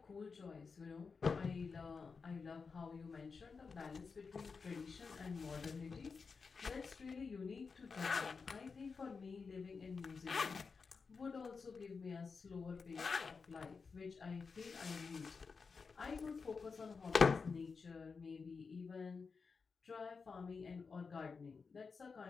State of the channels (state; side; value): quieter; right; 5.0 dB